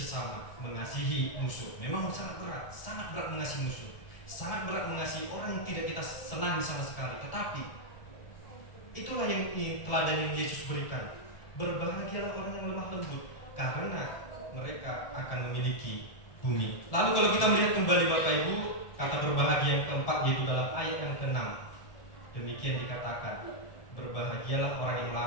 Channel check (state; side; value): late; right; 1.7 ms